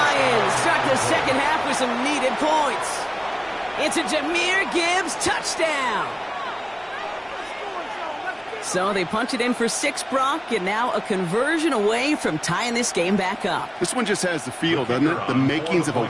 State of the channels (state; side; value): identical; both; correlation 1.00